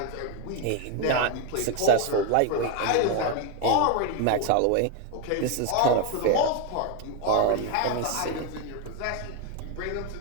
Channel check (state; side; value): different; both; correlation 0.01